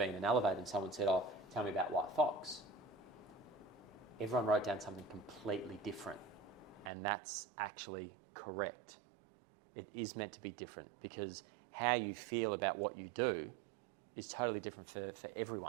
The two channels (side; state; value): left; drops out; at 6.9 s